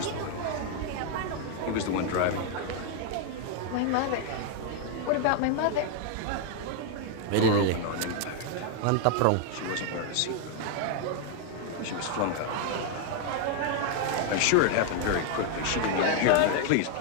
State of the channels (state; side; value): different; both; correlation 0.00